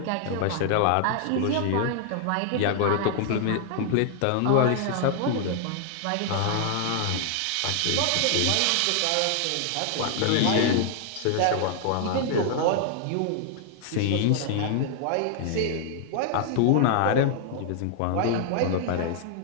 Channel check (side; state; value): both; different; correlation -0.01